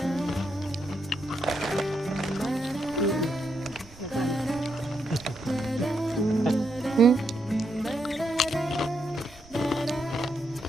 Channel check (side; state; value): right; noise; rumble, 22 dB below the sound